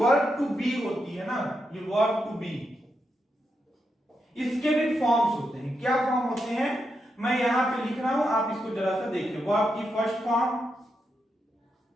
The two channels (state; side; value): normal; both; correlation 0.84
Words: टू बी होती है ना, ये वर्ब टू बी, इसके भी फॉर्म्स होते हैं। क्या फॉर्म होते हैं मैं यहां पे लिख रहा हूं, आप इसको जरा सा देखिए। वर्ब की फर्स्ट फॉर्म,